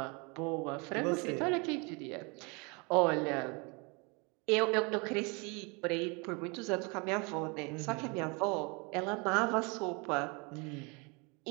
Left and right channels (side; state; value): left; quieter; 30.3 dB